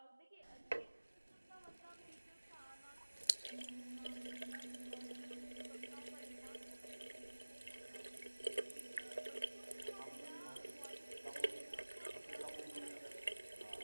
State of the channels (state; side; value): inverted; both; correlation -1.00